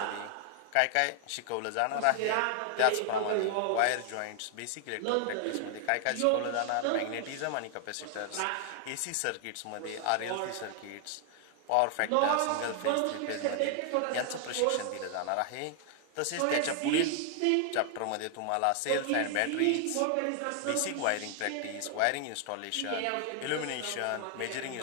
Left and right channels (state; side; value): different; both; correlation 0.00